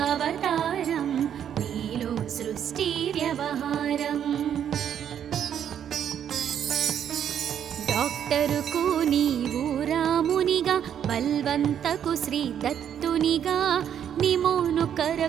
నీలో సృష్టి వ్యవహారం. డాక్టరుకు నీవు రామునిగా బల్వంతకు శ్రీ దత్తునిగా నిమోను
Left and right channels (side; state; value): left; quieter; 9.2 dB